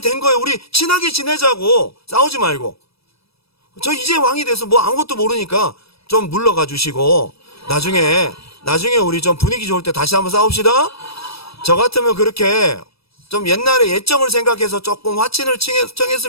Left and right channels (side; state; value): right; late; 0.77 ms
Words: 거예요. 우리 친하게 지내자고, 싸우지 말고. 저 이제 왕이 돼서 뭐 아무것도 모르니까 좀 물러가 주시고 나중에 우리 좀 분위기 좋을 때 다시 한번 싸웁시다. 저 같으면 그렇게 좀 옛날에 예정을 생각해서 조금 화친을